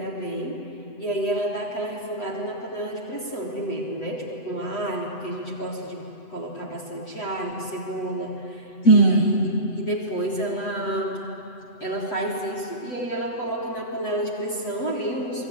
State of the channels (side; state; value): right; late; 8.0 ms